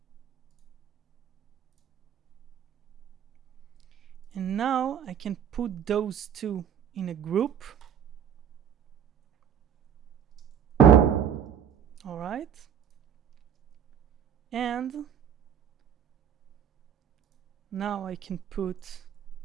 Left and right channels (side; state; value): left; quieter; 8.7 dB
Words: and now I can put those two in a group. All right, and now I can put